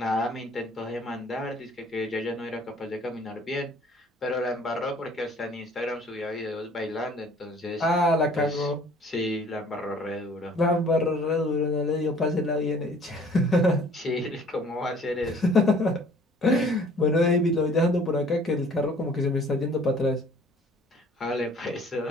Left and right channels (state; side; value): normal; both; correlation 0.54